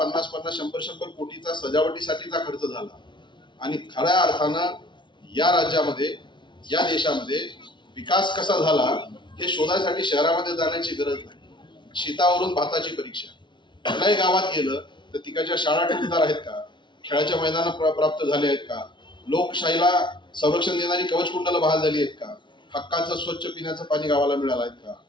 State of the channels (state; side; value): late; right; 0.23 ms